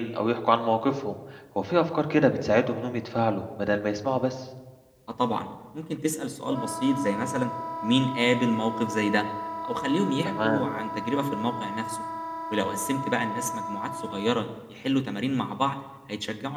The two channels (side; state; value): both; identical; correlation 1.00